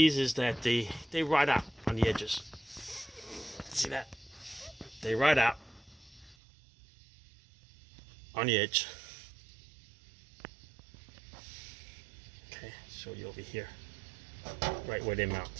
is that they ride out on the edges. See that? They ride out on the edge. Okay, show you over here. Right where they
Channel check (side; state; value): left; drops out; at 6.4 s